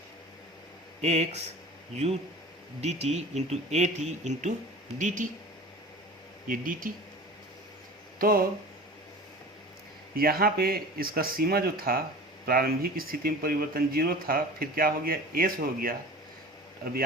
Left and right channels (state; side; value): normal; both; correlation 0.38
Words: x u D T into A T into D T, ये डी टी। तो यहाँ पे इसका सीमा जो था, प्रारंभिक स्थिति में परिवर्तन 0 था, फिर क्या हो गया, एस हो गया। अब